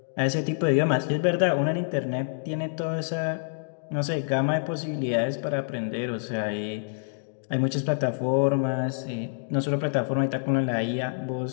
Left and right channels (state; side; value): silent; right; digital silence